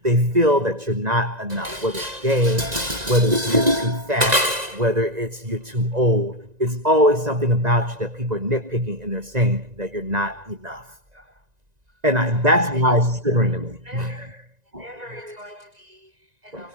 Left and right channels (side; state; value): left; late; 1.9 ms